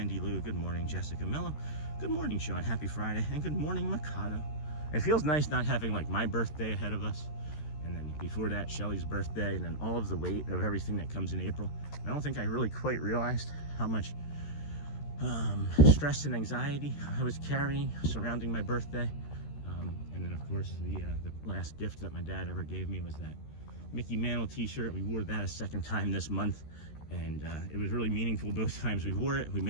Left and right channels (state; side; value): late; right; 13 ms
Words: Lou, good morning Jessica Mello, good morning Sean, happy Friday, and good morning Mikado. It feels nice not having like my birthday ahead of us, and then before that Shelly's birthday, and then all of the weight of everything that comes in April. I don't think I really quite realized how much stress and anxiety I was carrying surrounding my birthday. And then of course the last gift that my dad ever gave me was that Mickey Mantle t-shirt. We wore that a second time this month, and it was really meaningful both times we wore it. We